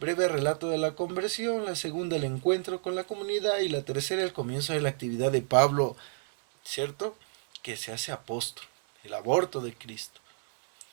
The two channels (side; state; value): left; silent; 58 dB below the other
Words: relato de la conversión; la segunda, el encuentro con la comunidad; y la tercera, el comienzo de la actividad de Pablo, ¿cierto? que se hace apóstol, el aborto de Cristo.